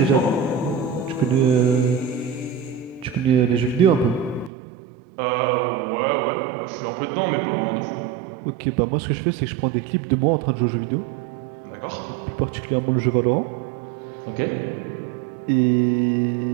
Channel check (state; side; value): drops out; left; at 4.5 s